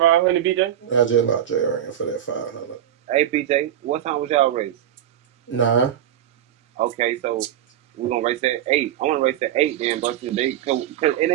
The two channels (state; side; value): quieter; left; 10.9 dB